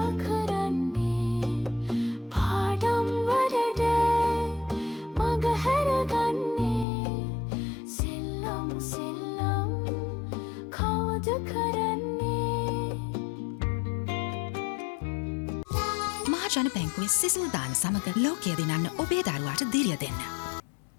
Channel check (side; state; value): right; drops out; at 6.9 s